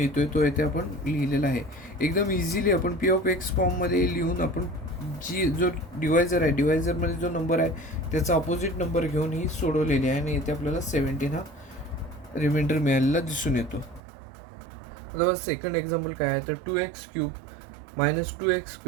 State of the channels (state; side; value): drops out; left; at 14.0 s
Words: तो इथे आपण लिहिलेला आहे. एकदम इझिली आपण पी ऑफ एक्स फॉर्ममध्ये लिहून आपण जो डिवायझर आहे डिवायझरमध्ये जो नंबर आहे त्याचा अपोजिट नंबर घेऊन ही सोडवलेली आहे आणि इथे आपल्याला 17 हा रिमाइंडर मिळालेला दिसून येतो. आता सेकंड एक्झाम्पल काय आहे तर 2x³